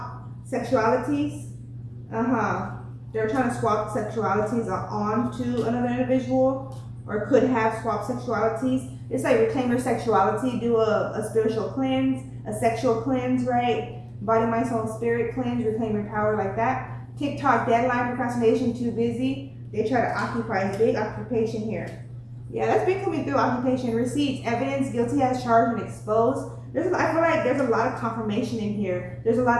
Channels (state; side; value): identical; both; correlation 1.00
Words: sexualities. They're trying to swap sexualities onto another individual, or could have swapped sexualities. It's like reclaim your sexuality, do a spiritual cleanse, a sexual cleanse, right? Body, mind, soul, spirit cleanse, reclaim your power like that. TikTok, deadline, procrastination, too busy. They try to occupy. It's big occupation here. Yeah, that's been coming through. Occupation, receipts, evidence, guilty as charged and exposed. I feel like there's a lot of confirmation in here. There's a